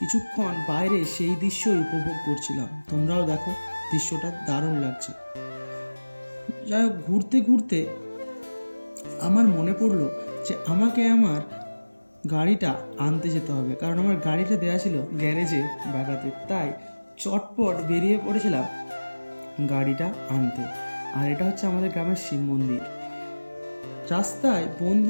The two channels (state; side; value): inverted; both; correlation -1.00